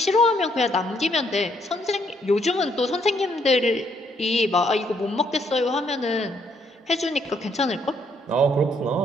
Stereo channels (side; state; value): both; normal; correlation 0.71